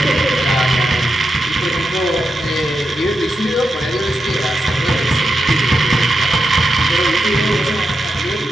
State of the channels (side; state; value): both; normal; correlation 0.87